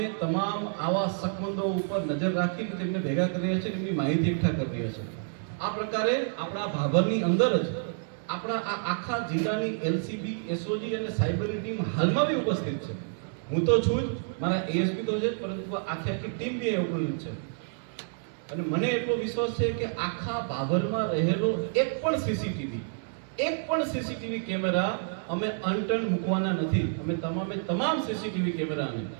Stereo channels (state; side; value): silent; left; 59 dB below the other